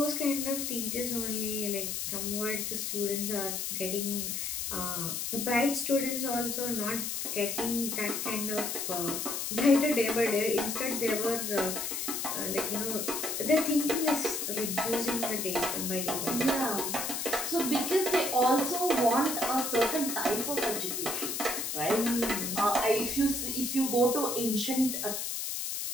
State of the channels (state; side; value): noise; left; hiss, 2 dB below the sound